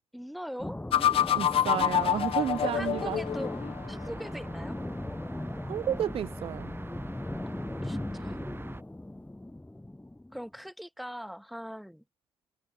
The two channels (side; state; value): right; quieter; 3.1 dB